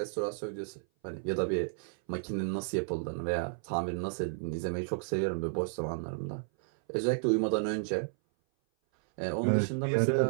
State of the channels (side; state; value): left; silent; 56 dB below the other